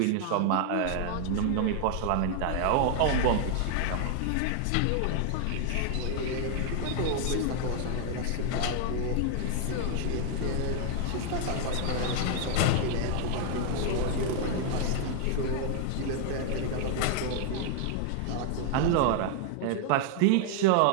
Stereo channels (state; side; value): different; both; correlation 0.00